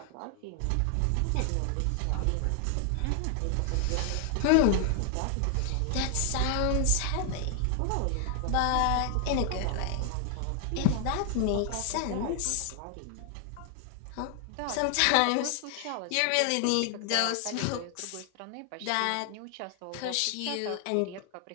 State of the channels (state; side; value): different; both; correlation 0.00